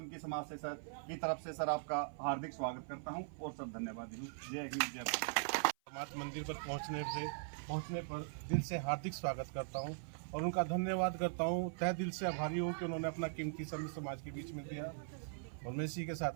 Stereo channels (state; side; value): silent; left; 51 dB below the other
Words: समाज से सर की तरफ से सर आपका हार्दिक स्वागत करता हूं और सर धन्यवाद हूँ। जय हिंद, जय भारत। समाज मंदिर पर पहुंचने पर दिल से हार्दिक स्वागत करता हूं और उनका धन्यवाद करता हूं, तहे दिल से आभारी हूं कि उन्होंने अपना कीमती समय समाज के बीच में दिया। और मैं इसी के